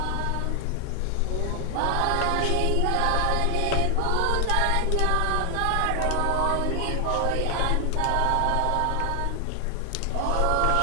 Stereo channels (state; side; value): different; both; correlation 0.00